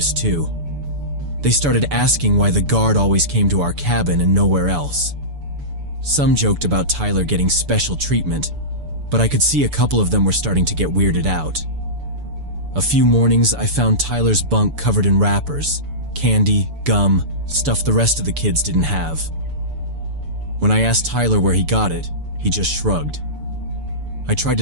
too. They started asking why the guard always came to our cabin and nowhere else. Some joked about Tyler getting special treatment, but I could see a couple of them were starting to get weirded out. A few mornings I found Tyler's bunk covered in wrappers, candy, gum, stuff the rest of the kids didn't have. When I asked Tyler where he got it, he just shrugged. I tried to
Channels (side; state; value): left; late; 6.9 ms